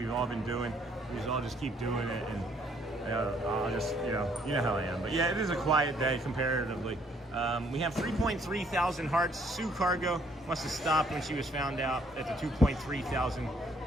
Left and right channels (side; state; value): both; normal; correlation 0.66